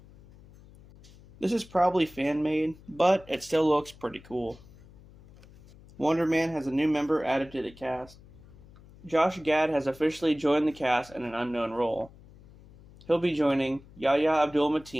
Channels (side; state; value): left; noise; hum, 23 dB below the sound